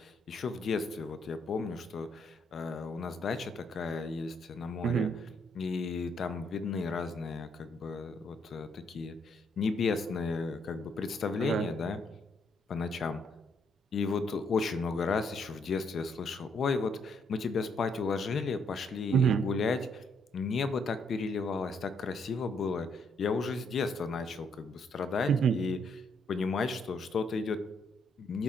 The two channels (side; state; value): both; normal; correlation 0.72